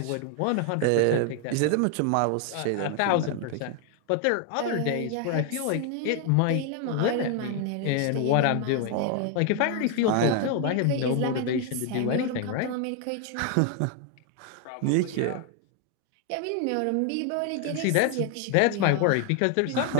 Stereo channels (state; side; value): different; both; correlation 0.00